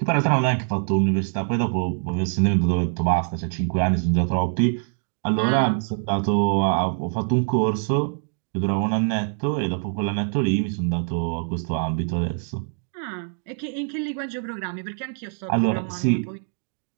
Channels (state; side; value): silent; left; digital silence